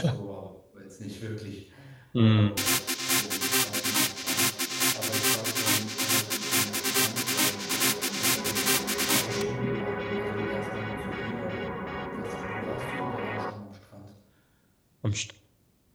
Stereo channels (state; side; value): identical; both; correlation 1.00